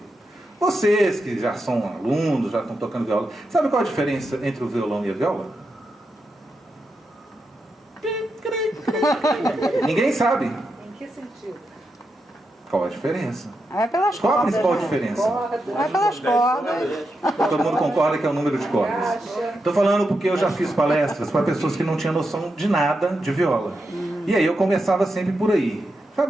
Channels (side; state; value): both; normal; correlation 0.86